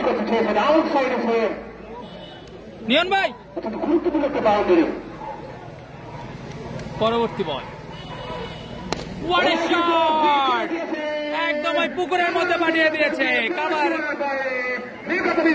করতে চেয়েছেন আউটসাইড এসে নিয়ন ভাই অত্যন্ত গুরুত্বপূর্ণ একটা বাউন্ডারি পরবর্তী বল What a shot! একদম ওই পুকুরের মধ্যে পাঠিয়ে দিয়েছে কাভার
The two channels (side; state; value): both; identical; correlation 1.00